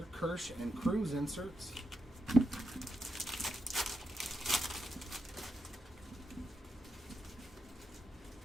Kirsch and Cruz inserts.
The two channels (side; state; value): both; normal; correlation 0.84